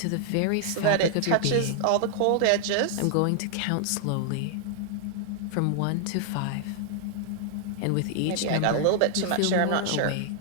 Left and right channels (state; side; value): different; both; correlation 0.00